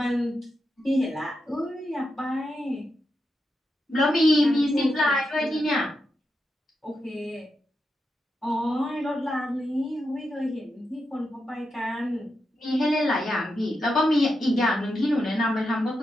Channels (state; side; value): normal; both; correlation 0.86